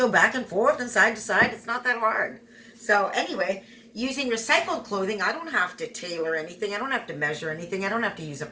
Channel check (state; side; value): identical; both; correlation 1.00